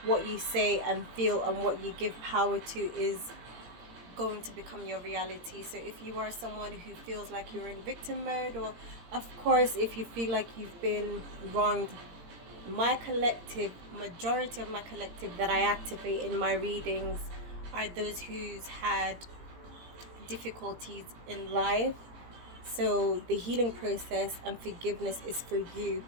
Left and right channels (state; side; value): late; left; 17 ms